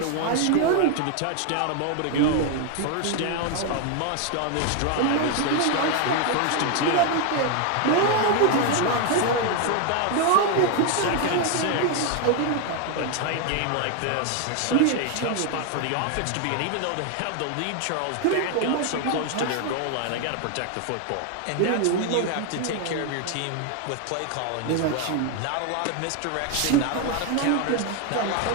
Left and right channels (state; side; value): different; both; correlation 0.01